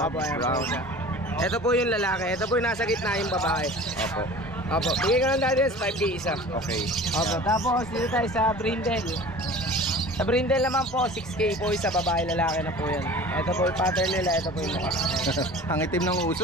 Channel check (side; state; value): both; normal; correlation 0.41